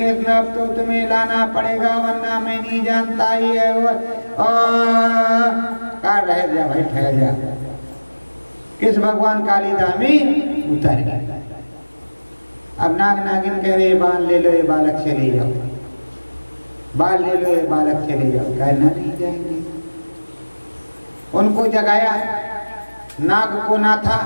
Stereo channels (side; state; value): both; inverted; correlation -1.00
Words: अब तो तुम्हें लाना पड़ेगा वरना मैं नहीं जानता ही है। कहा रह जा भाई, ठहर जा। कृष्ण भगवान कालिदा में उतर गए। अब नाग नागिन कह रहे बाल ले लो ये बालक चले जाओ, बाल ले लो ये बालक चले जाओ। कहना नहीं जाएंगे, उनको जगाया, नाग को नाथा,